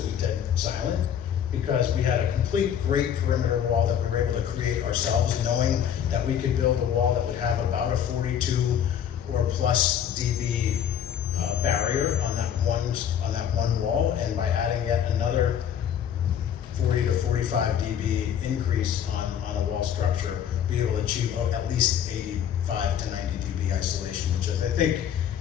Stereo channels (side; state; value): right; quieter; 9.2 dB